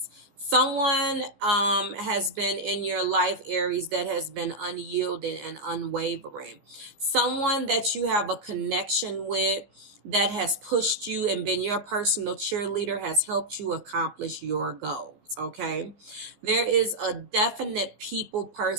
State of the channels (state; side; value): late; left; 15 ms